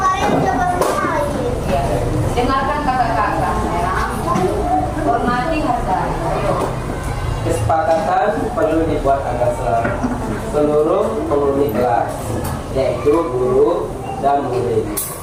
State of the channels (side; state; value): both; identical; correlation 1.00